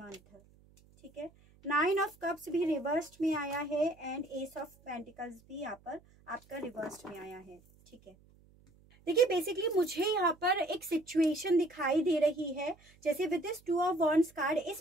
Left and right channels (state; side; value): noise; right; hum, 28 dB below the sound